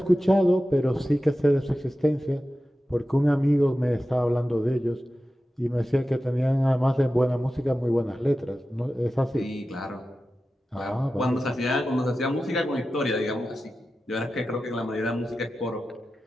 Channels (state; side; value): normal; both; correlation 0.93